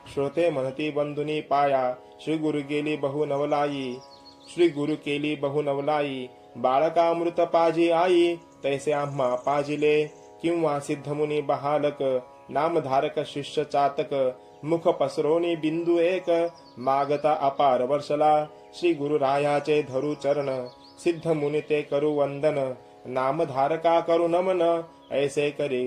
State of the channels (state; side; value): identical; both; correlation 1.00